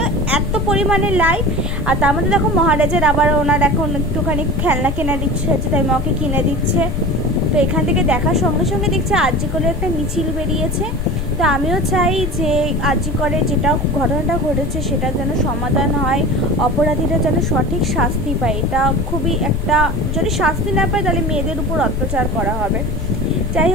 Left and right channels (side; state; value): left; noise; rumble, 3 dB below the sound